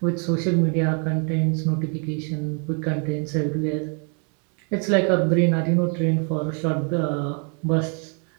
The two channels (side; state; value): left; quieter; 39.7 dB